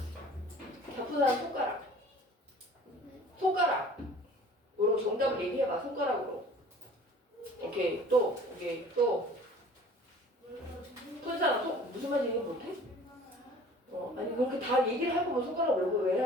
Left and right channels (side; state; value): both; normal; correlation 0.48